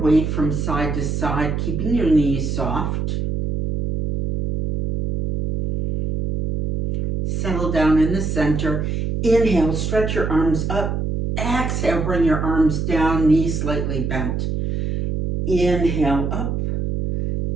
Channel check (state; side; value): noise; right; hum, 1 dB below the sound